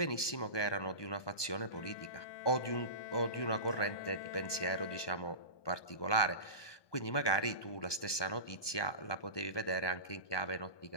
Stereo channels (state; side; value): late; right; 1.2 ms